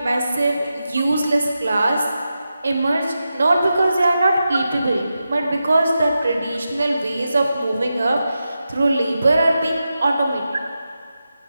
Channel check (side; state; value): both; inverted; correlation -0.90